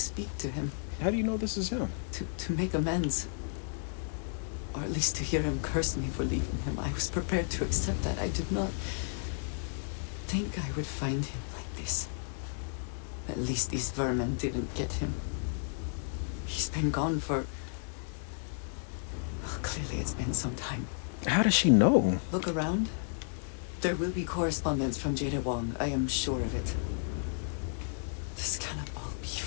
to him. How do you know this is him? To make amends. Or at least to hear him curse me for leaving him. I was prepared to accept that. I did not think I would find him like this. At least these vermin didn't get him. He's been gone for... Well, clearly it's been some time. How does she know? Look around. There will be correspondence from Jada Wong. I am sure of it. This cannot all be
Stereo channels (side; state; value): right; silent; digital silence